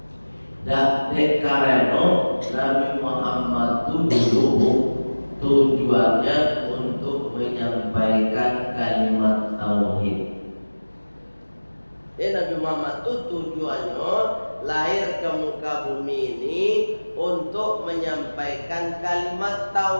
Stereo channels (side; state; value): both; inverted; correlation -1.00